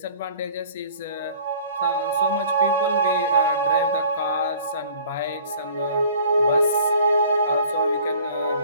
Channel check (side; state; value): both; inverted; correlation -0.50